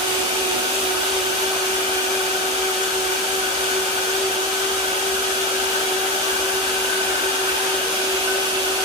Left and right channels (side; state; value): both; normal; correlation 0.17